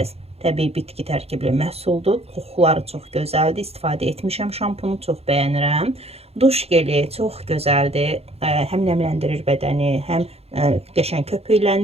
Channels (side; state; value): left; late; 0.29 ms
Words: təbii bitki tərkibli məhsuldur. Qoxuları çox gözəldir. İstifadə etmişəm şampunu, çox bəyənirəm. Duş geli çox gözəldir. Həm nəmləndirir bədəni, həm qəşəng